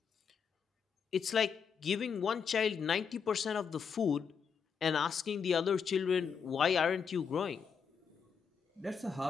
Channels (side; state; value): right; quieter; 6.6 dB